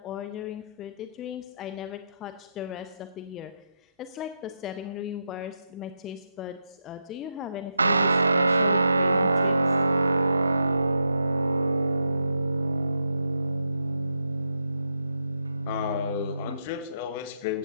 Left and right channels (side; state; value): both; inverted; correlation -0.83